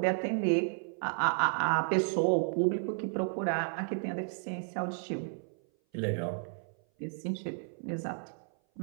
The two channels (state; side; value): silent; left; 56 dB below the other